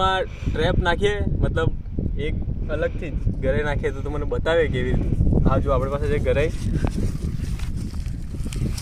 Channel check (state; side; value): identical; both; correlation 1.00